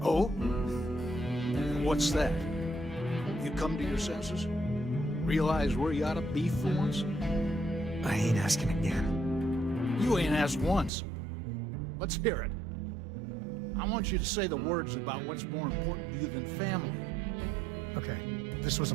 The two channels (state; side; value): drops out; left; at 10.9 s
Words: Oh? What's that? You come to your senses? Realize where you ought to be for once? I ain't asking again. You ain't asked once. Let's hear it. I want you to say the words about what's more important to you than family. Okay, this was a